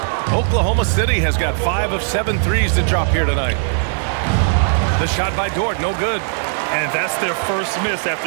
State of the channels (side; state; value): left; silent; 67 dB below the other